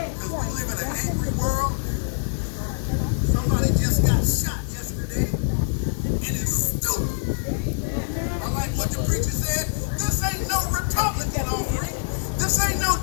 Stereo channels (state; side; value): silent; right; digital silence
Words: Because we live in an angry world. Somebody just got shot yesterday. And it's stupid. I like what the preacher said. This ain't no Republican offering. This ain't no